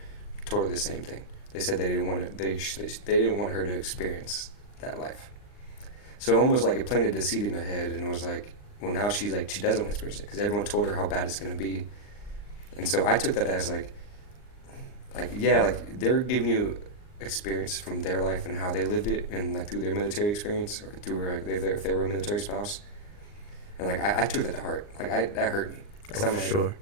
told her the same thing. They said they didn't want to, they didn't want her to experience that life. So almost like it planted the seed in her head, and it was like, well, now she's like, she doesn't want to experience it because everyone told her how bad it's gonna be. And so I took that as like yeah, like they're giving you experience from their life and how they lived it, and like through their military experience or through like if they were a military spouse, and like I took that to heart. Like that hurt me because I'm for like sure.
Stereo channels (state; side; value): late; right; 39 ms